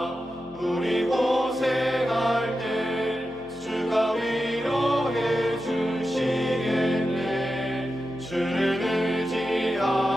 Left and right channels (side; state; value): both; normal; correlation 0.91